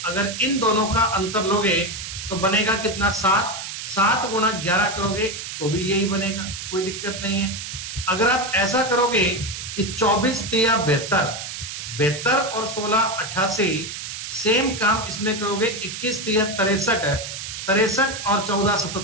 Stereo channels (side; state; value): right; noise; hiss, 8 dB below the sound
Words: अगर इन दोनों का अंतर लोगे तो बनेगा कितना, 7, 7 गुणा 11 करोगे तो भी यही बनेगा, कोई दिक्कत नहीं है। अगर आप ऐसा करोगे कि 24 तिया 72, 72 और 16 88, सेम काम इसमें करोगे, 21 तिया 63, 63 और 14